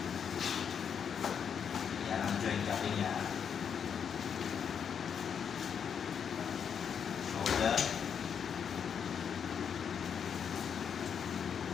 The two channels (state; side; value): quieter; right; 7.4 dB